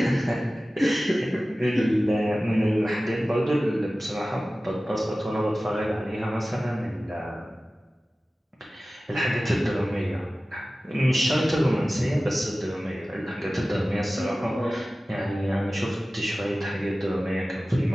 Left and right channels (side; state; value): both; normal; correlation 0.96